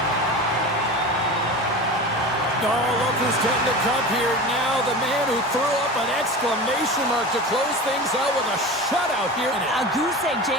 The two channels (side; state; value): both; normal; correlation 0.31